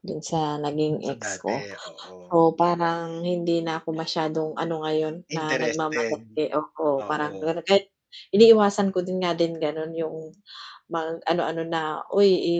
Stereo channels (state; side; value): identical; both; correlation 1.00